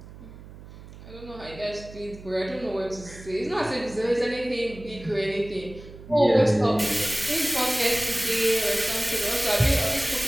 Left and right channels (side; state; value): right; noise; hum, 17 dB below the sound